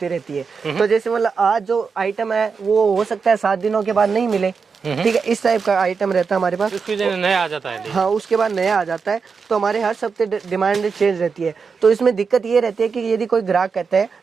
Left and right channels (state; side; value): quieter; left; 5.4 dB